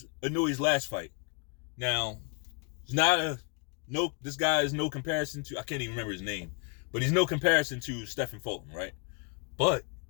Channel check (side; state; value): right; quieter; 33.5 dB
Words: Inoue's last fight? Now, this guy is no comparison to, I can't even remember his name, but he's no comparison to Stephen Fulton, right? But